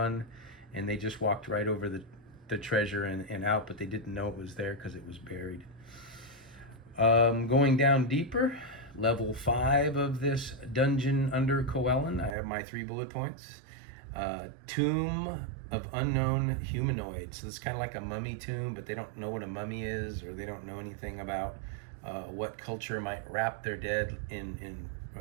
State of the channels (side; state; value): left; drops out; at 12.4 s